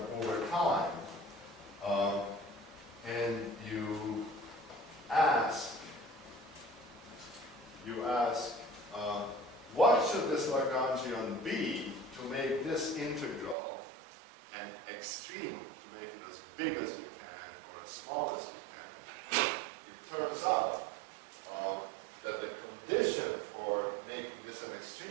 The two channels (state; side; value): drops out; left; at 13.6 s